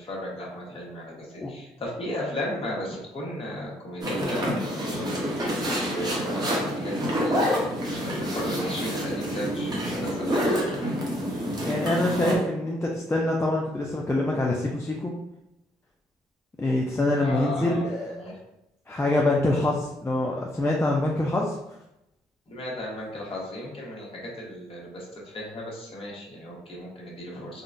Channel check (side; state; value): both; normal; correlation 0.70